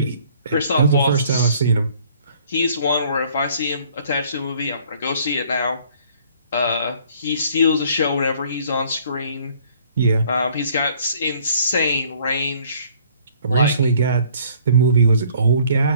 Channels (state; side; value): inverted; both; correlation -0.58